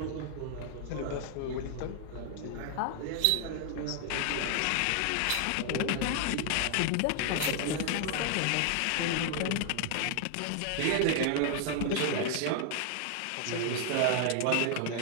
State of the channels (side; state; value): both; different; correlation 0.00